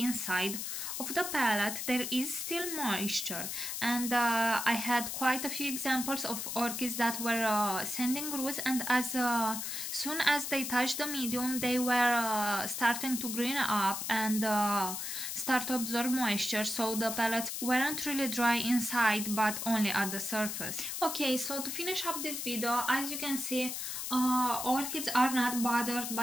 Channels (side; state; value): left; noise; hiss, 4 dB below the sound